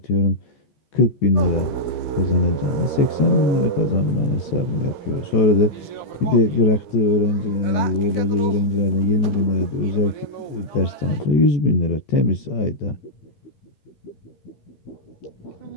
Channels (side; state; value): right; late; 14 ms